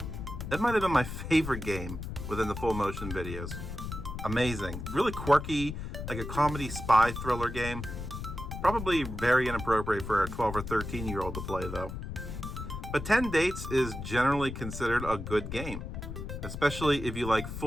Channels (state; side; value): noise; left; rumble, 7 dB below the sound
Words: That might have been my favorite game within the full motion videos. Amazing. Really quirky, like a comedy spy thriller game. Probably very inappropriate for a 12 or 13-year-old to play though. But 10 Dates is generally considered a good game, especially if you like